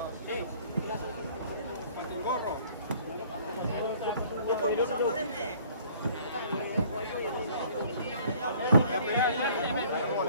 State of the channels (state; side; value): inverted; both; correlation -0.55